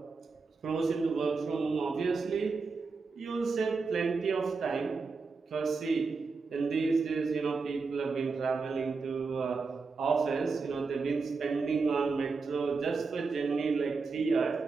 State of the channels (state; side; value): quieter; left; 4.5 dB